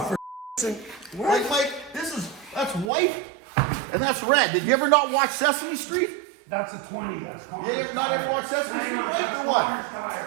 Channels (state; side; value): drops out; left; at 2.9 s